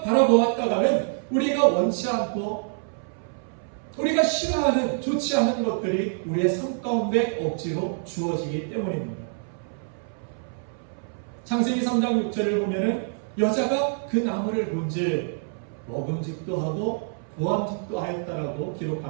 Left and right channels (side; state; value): left; silent; 60 dB below the other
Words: 바라보았다가는 우리가 원치 않고 우리가 싫어하는, 좋지 않은 것들이 우리의 삶 가운데 억지로 주어지기 때문입니다. 창세기 3장 6절을 보면은 여자가 그 나무를 본즉 먹음직도 하고 보암직도 하였다라고